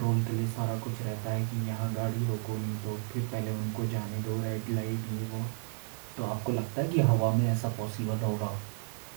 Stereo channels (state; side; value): silent; left; 56 dB below the other